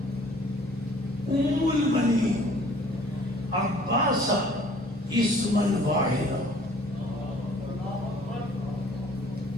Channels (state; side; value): normal; both; correlation 0.54